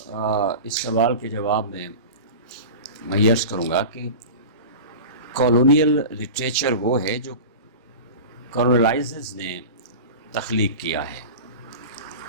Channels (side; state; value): both; inverted; correlation -0.31